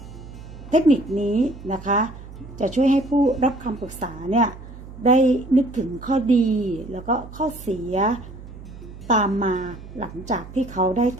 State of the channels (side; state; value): right; noise; hum, 15 dB below the sound